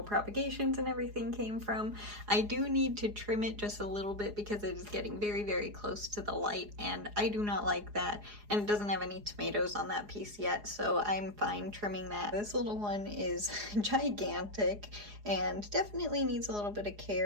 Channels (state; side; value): late; left; 4.8 ms